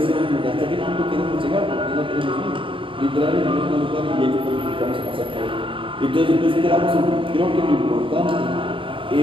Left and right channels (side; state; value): left; late; 0.25 ms